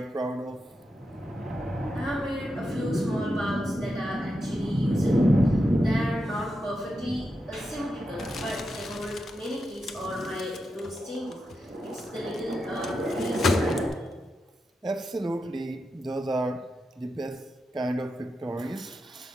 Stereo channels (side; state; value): both; normal; correlation 0.87